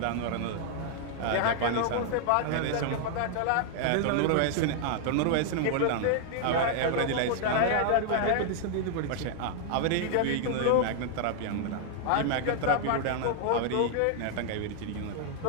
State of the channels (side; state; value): both; different; correlation 0.00